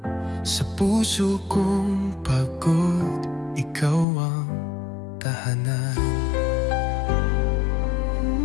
Sa puso kong pagod, ikaw ang tahanan.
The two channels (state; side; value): drops out; right; at 4.0 s